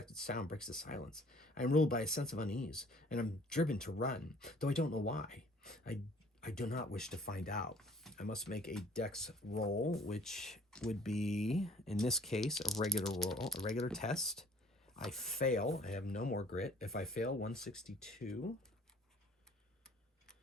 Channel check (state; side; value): normal; both; correlation 0.54